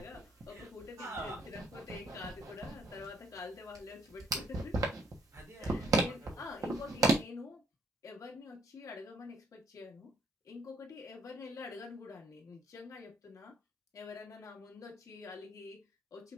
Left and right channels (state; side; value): normal; both; correlation 0.67